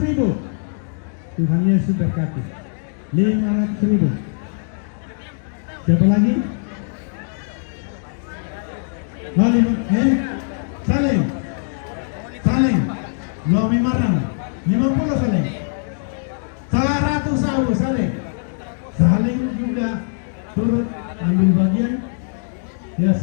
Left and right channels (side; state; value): right; silent; digital silence